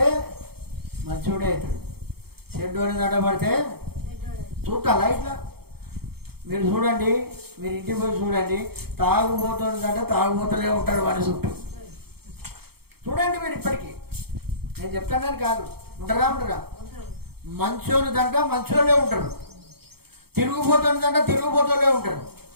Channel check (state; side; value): late; left; 0.96 ms